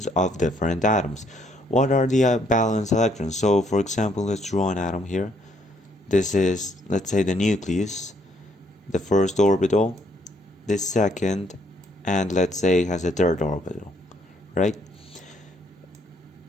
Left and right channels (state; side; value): normal; both; correlation 0.69